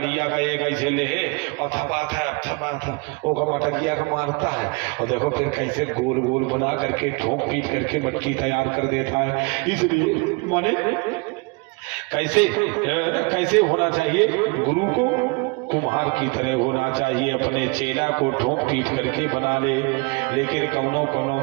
का एक ऐसे ले और थपाता ओका मटकिया का मारता है, और देखो फिर कैसे गोल गोल बना करके ठोक पीट करके मटकी तैयार कर देता है। इसलिए माने कैसे होना चाहिए? गुरु को कुम्हार की तरह होना चाहिए, अपने चेला को ठोक पीट करके बना ले। लेकिन कौनो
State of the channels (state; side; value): quieter; left; 29.8 dB